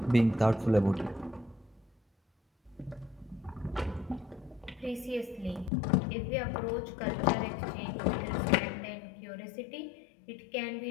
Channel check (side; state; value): right; drops out; at 5.7 s